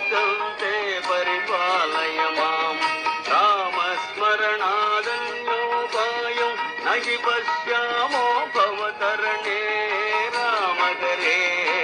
ते परिपालय मां रामस्मरणादन्योपायं न हि पश्यामो भवतरणे राम हरे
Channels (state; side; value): identical; both; correlation 1.00